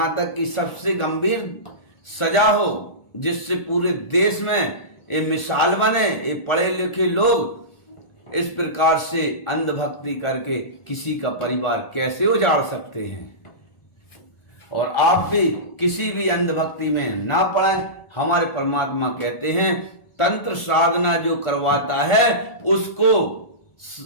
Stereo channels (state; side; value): late; right; 1.4 ms